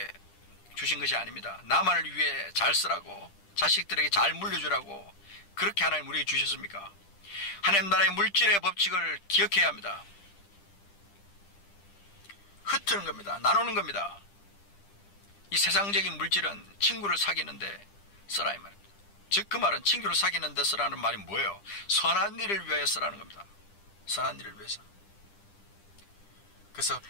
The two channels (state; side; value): late; right; 10 ms